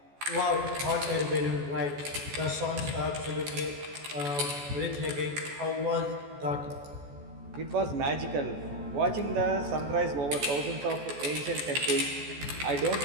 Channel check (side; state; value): left; late; 14 ms